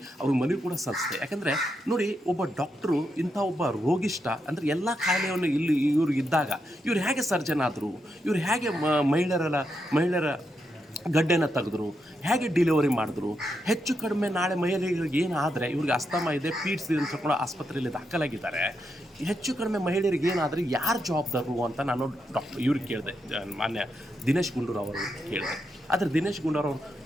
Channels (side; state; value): both; normal; correlation 0.83